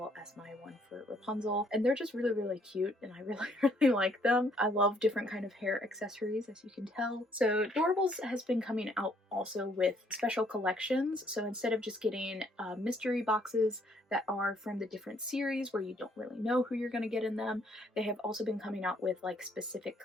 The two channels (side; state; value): both; normal; correlation 0.67